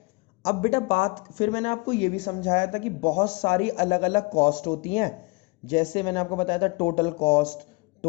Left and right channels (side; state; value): right; quieter; 27.7 dB